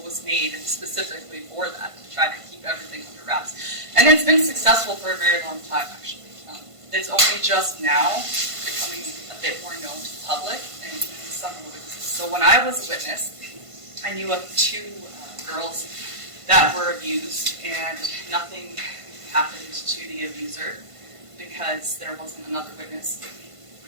was made specifically for that, to try to keep everything under wraps. And it's been successful for a very long time, actually. It's only just now becoming a bit more known to the public and some of the witnesses. So when I was a witness, I knew of 2 girls that were abused, and nothing happened to the abuser because there wasn't another witness.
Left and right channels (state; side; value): late; left; 1.5 ms